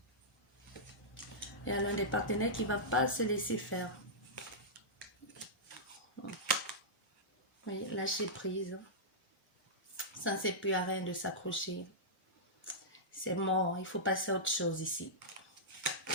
Il y a l'un des partenaires qui ne va pas se laisser faire. Oui, lâcher prise. Ça ne sert plus à rien de s'accrocher. C'est mort, il faut passer à autre chose ici.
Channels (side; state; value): both; normal; correlation -0.13